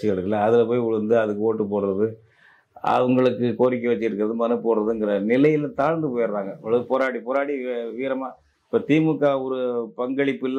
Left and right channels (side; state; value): both; identical; correlation 1.00